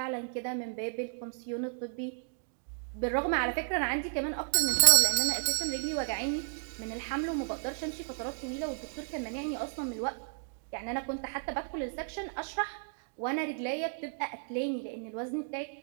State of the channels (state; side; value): silent; left; digital silence